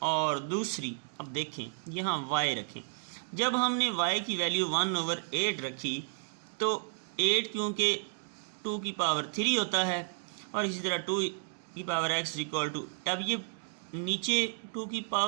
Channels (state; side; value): silent; left; digital silence